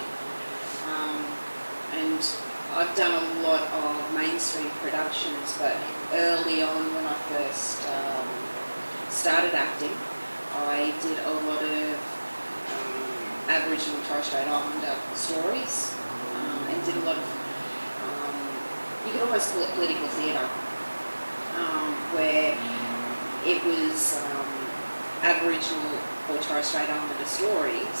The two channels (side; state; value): both; inverted; correlation -1.00